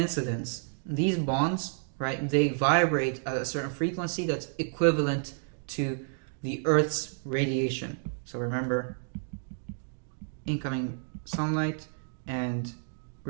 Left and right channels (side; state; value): left; silent; digital silence